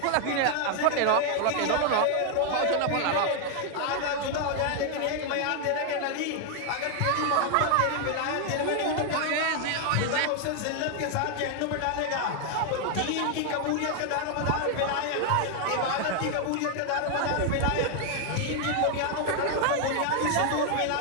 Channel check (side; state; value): both; different; correlation 0.00